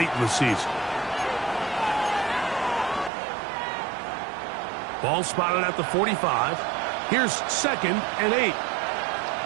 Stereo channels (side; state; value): left; drops out; at 3.1 s